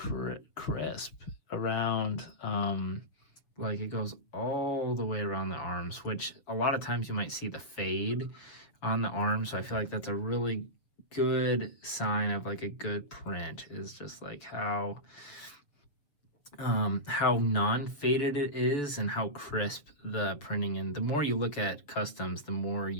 around, like it goes all the way around the arms, which a lot of times you might see the fade on the arm, so I feel like that's a really good sign of like a good print, is just like how non-faded it is and how crisp the printing. And the more you look at customs, the more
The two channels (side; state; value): right; late; 6.6 ms